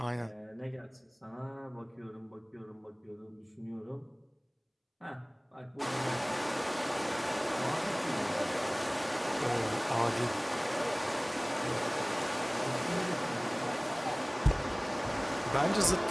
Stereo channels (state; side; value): identical; both; correlation 1.00